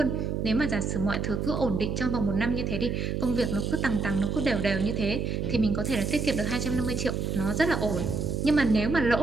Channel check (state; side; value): noise; right; hum, 1 dB below the sound